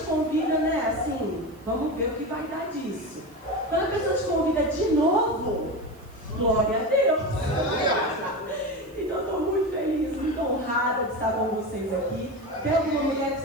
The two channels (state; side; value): noise; right; hiss, 29 dB below the sound